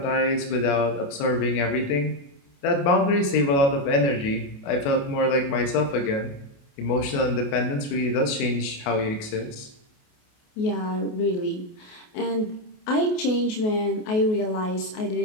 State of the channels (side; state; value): right; late; 28 ms